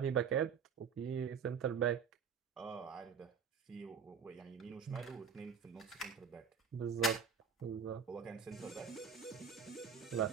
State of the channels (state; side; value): quieter; left; 6.6 dB